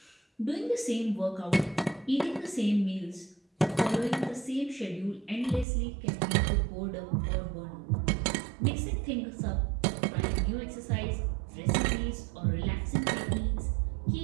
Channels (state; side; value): drops out; left; at 5.7 s